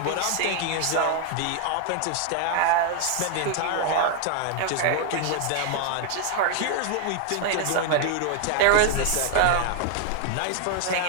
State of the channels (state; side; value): different; both; correlation 0.00